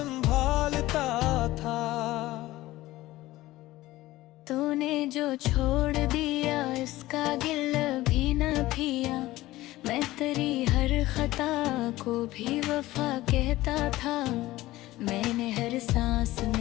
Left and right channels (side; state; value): right; quieter; 17.2 dB